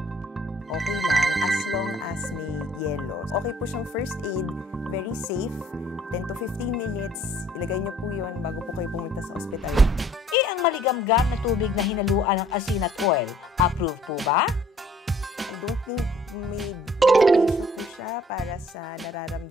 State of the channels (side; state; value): both; normal; correlation 0.58